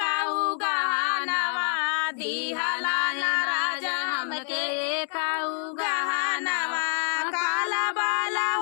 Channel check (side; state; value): right; silent; digital silence